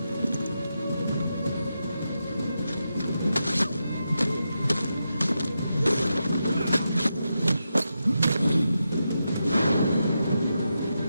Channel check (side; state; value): both; inverted; correlation -0.87